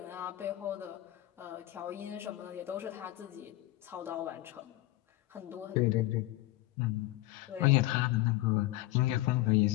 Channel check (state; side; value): quieter; right; 17.0 dB